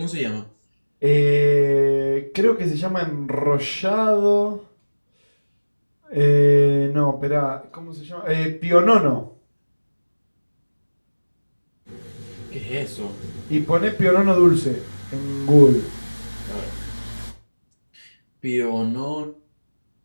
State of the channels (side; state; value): both; inverted; correlation -1.00